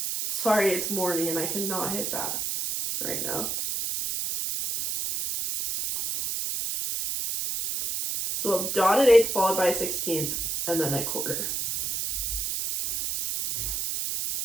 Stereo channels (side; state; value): right; noise; hiss, 1 dB below the sound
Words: Sorry, it's morning and I cannot hit that right now. So a dotted eighth followed by a 16th and then a quarter.